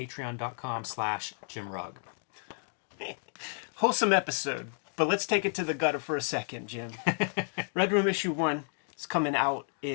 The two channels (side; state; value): right; silent; 57 dB below the other